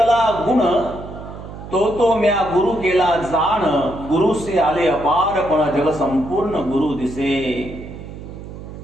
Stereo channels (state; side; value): noise; right; hum, 13 dB below the sound